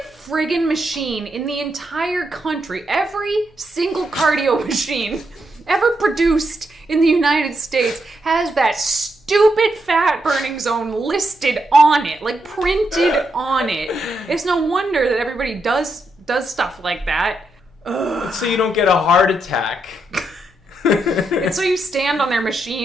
friggin' machine in the entire country, every single cardio machine ever produced in the United States has that stupid fat burning zone listed on it, like printed on it. It's no wonder that everybody does does stuff like that. So you don't get a heart attack. And so you stand on their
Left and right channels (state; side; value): normal; both; correlation 0.81